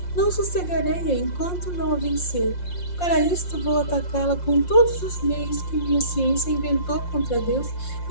Não sossegarei enquanto não a vencer. Para isto vou atacá-la com todos os meios que minha ciência inventou contra Deus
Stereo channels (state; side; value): late; right; 5.6 ms